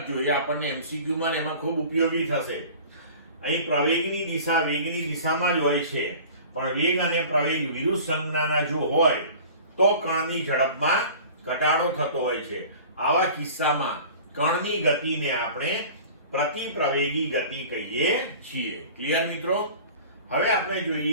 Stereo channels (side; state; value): both; inverted; correlation -0.42